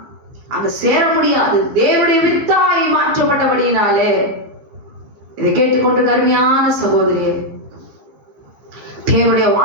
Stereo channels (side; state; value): left; late; 15 ms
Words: அங்க சேர முடியாது. தேவனுடைய வித்தாய் மாற்றப்பட்டபடியினாலே. இதை கேட்டுக்கொண்டு கருமையான சகோதரியே, தேவனுடைய